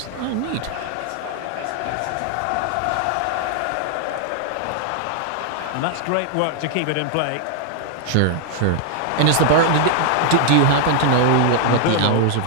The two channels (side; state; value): both; different; correlation 0.00